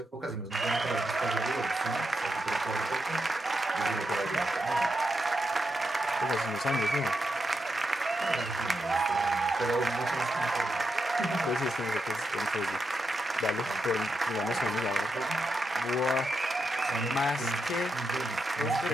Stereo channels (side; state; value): both; normal; correlation 0.85